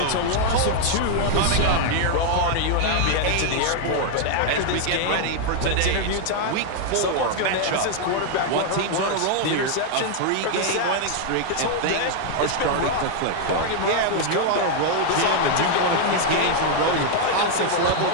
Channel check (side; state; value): both; different; correlation 0.00